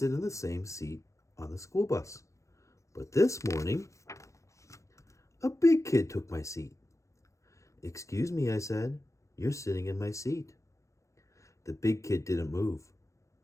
in the same seat on the school bus. But this morning, a big kid took my seat. "Excuse me," I said, "you're sitting in my seat." The big kid didn't move.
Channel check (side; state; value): right; late; 0.15 ms